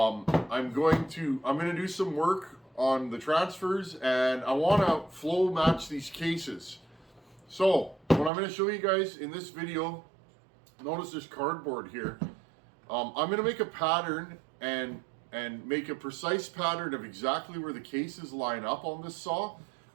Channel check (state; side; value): drops out; left; at 8.3 s